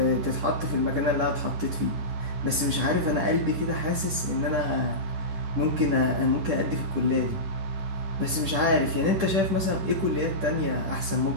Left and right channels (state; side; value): late; left; 10 ms